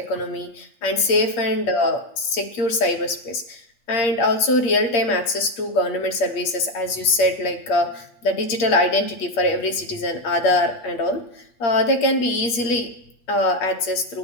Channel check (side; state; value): right; late; 8.7 ms